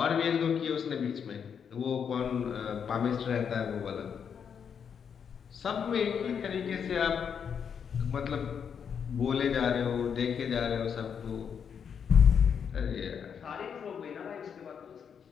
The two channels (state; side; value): quieter; right; 7.3 dB